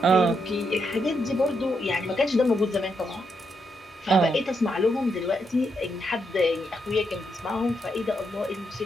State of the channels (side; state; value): both; normal; correlation 0.80